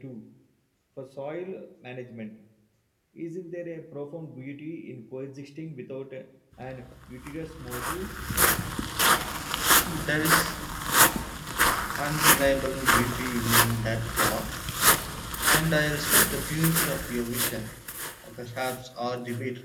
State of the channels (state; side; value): identical; both; correlation 1.00